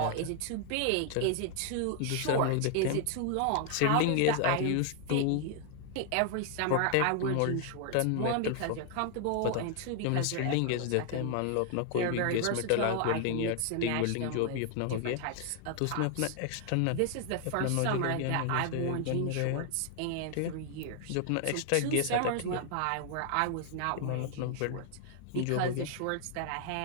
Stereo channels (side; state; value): both; different; correlation 0.00